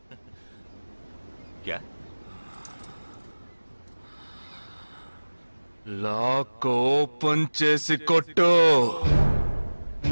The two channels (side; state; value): both; inverted; correlation -1.00